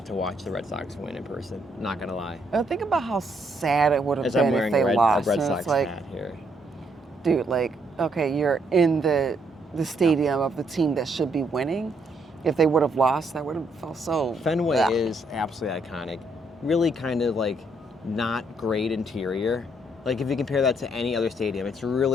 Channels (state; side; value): normal; both; correlation 0.72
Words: to watch the Red Sox win in person. Not gonna lie. Think about how sad it would have As I'm been if wearing they a Red lost. And Sox it's like, hat here. dude, okay, you're in the stadium of the team that should be winning. If they would have lost, that would have felt so. Fenway Ugh. is absolutely iconic. Really kind of like not great interior. Like if you compare that to any other stadium, it's